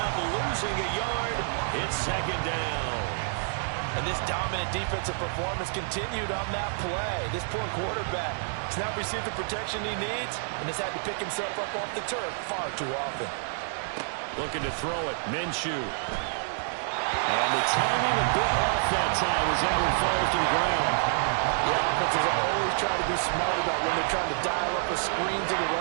up losing a yard. It's 2nd down. And this dominant defensive performance continued on that play. This poor quarterback has not received the protection he needs and has had to pick himself up off the turf far too often. Looking to throw it, Minshew. And the timing a bit off that time as that one falls to the ground. The offenses always try to be smart about when they're trying to dial up a screen to the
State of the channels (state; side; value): silent; left; digital silence